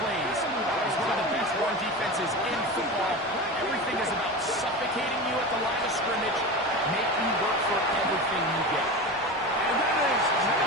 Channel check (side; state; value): both; normal; correlation 0.27